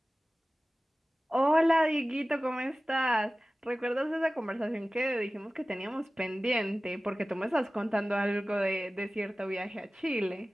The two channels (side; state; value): both; normal; correlation 0.97